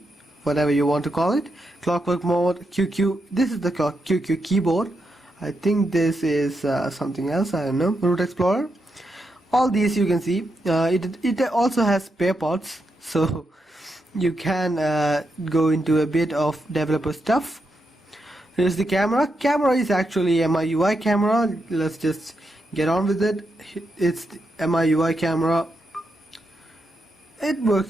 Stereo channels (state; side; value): normal; both; correlation 0.84